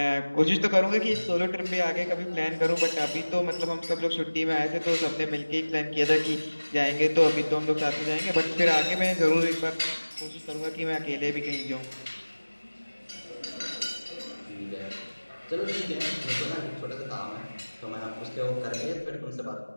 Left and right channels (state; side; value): inverted; both; correlation -1.00